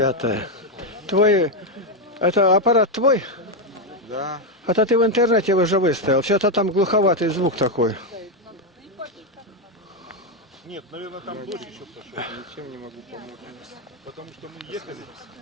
Твой, это аппарат твой? Да. Это ты в интернете уже выставил. Все-то там глуховатый звук такой. Нет, наверное, там дождь еще пошел. Ничем не могу помочь. Потому что мы ехали,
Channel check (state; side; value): normal; both; correlation 0.05